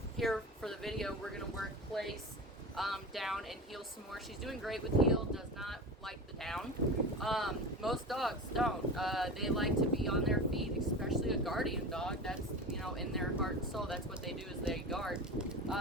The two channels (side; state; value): both; normal; correlation 0.29